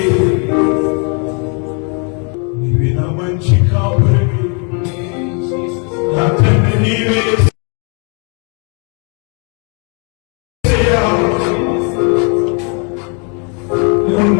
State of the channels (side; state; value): right; quieter; 37.1 dB